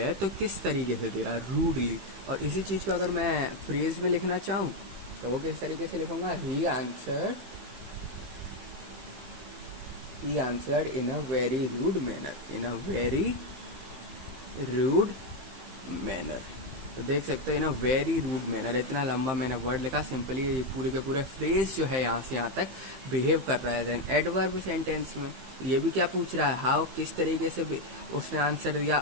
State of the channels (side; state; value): left; late; 15 ms